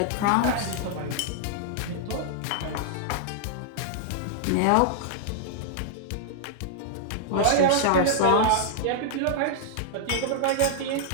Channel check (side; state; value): both; different; correlation -0.01